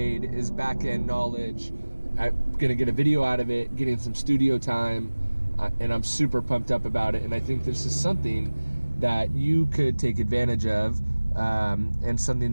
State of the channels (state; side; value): inverted; both; correlation -1.00